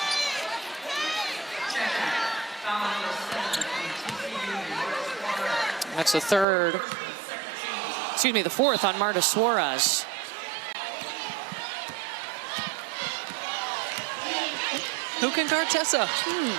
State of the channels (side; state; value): left; drops out; at 6.5 s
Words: That's the fourth on Marta Suarez. Who can guard Tessa?